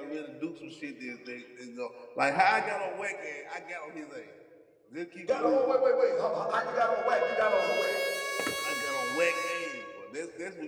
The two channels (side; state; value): both; identical; correlation 1.00